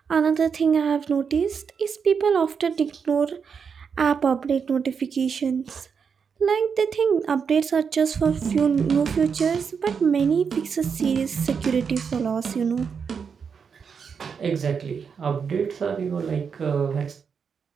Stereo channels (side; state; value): left; quieter; 6.3 dB